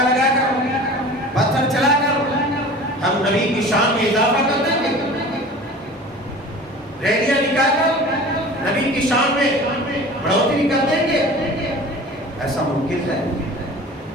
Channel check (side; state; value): both; normal; correlation 0.40